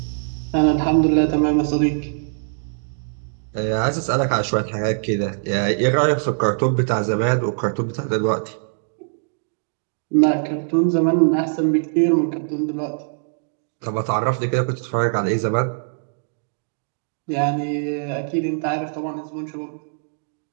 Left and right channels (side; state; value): left; silent; digital silence